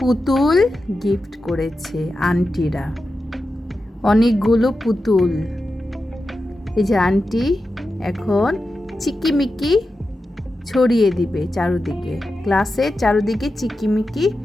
পুতুল গিফট করেছে আন্টিরা, অনেকগুলো পুতুল। এই যে আন্টি এখন চিকিমিকি ছড়িয়ে দিবে চারুদিকে, ক্লাসের চারুদিকে চিকিমিকি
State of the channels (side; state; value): both; normal; correlation 0.91